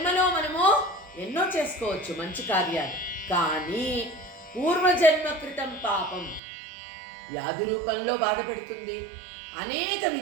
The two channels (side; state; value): left; drops out; at 6.4 s